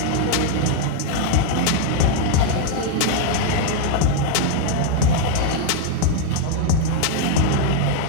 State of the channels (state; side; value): different; both; correlation 0.00